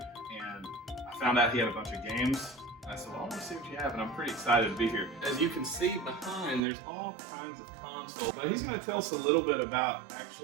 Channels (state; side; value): drops out; left; at 6.6 s